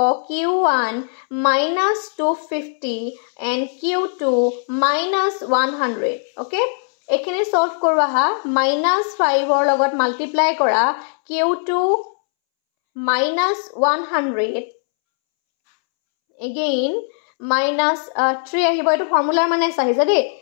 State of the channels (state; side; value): silent; right; 66 dB below the other